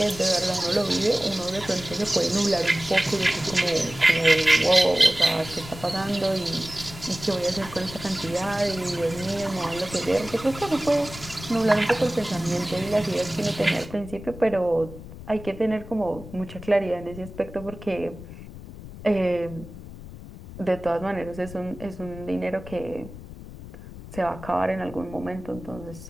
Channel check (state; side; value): noise; left; rumble, 14 dB below the sound